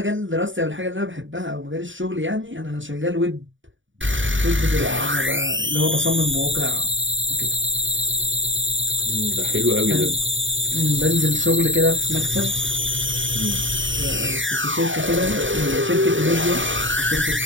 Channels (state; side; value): late; left; 0.56 ms